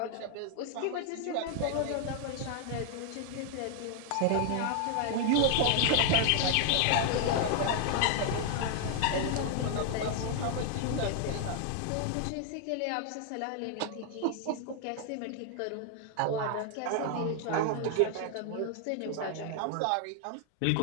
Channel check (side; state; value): both; different; correlation 0.00